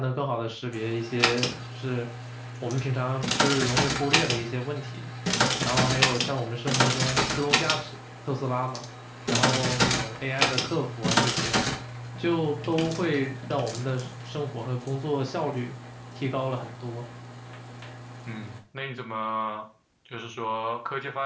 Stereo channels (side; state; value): both; identical; correlation 1.00